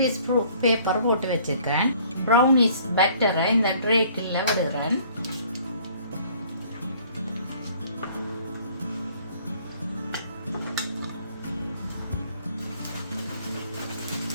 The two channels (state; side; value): inverted; both; correlation -0.56